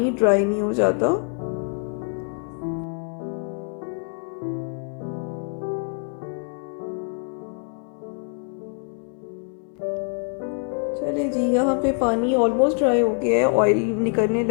ड्राई नहीं हो जाता। चलिए जी, यहाँ पे पानी ऑलमोस्ट ड्राई हो गया है, ऑयल निकलने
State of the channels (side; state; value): right; quieter; 39.9 dB